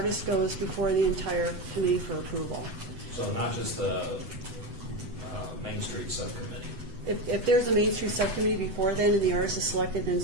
goes before the entire committee for approval. So not just the Main Street subcommittee? If there's a Main Street subcommittee before then and the artist is selected, then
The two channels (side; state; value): left; late; 8.0 ms